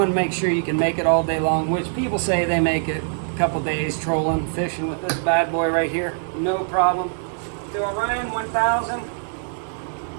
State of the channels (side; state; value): left; silent; 57 dB below the other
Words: to make sure you can make it all day long, which people say they make it a couple days trolling, fishing with this bad boy right here, no problem. The Orion 1000,